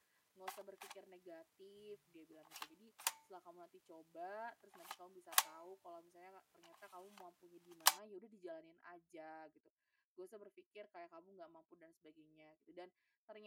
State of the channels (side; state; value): both; identical; correlation 1.00